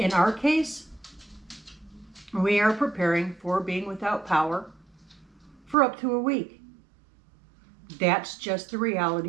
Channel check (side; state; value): left; drops out; at 5.8 s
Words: our case, we are preparing for being without power for up to a week. That's just the